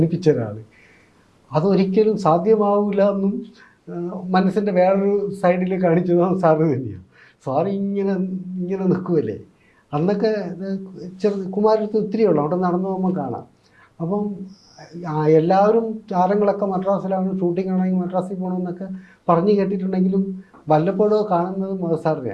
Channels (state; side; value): identical; both; correlation 1.00